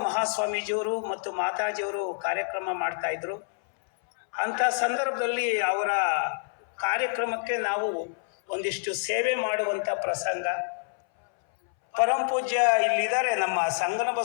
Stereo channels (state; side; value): silent; right; 60 dB below the other